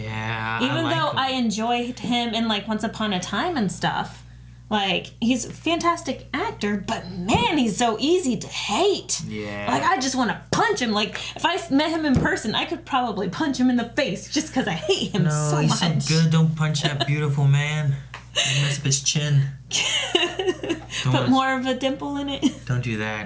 Even though I enjoyed him in like Once Upon a Time and stuff. Like, he's a fantastic actor, but man, he's so easy to hate. Yeah. Like, I just want to punch him. Like, if I met him in person, I could probably punch him in the face just because I hate him so much. No, he's so good. Don't punch that beautiful man. You mess up his chin. Put more of a dimple in it. Don't do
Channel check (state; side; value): identical; both; correlation 1.00